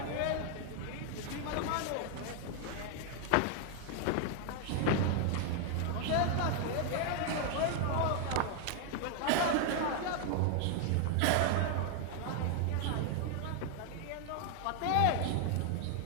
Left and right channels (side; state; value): both; different; correlation 0.00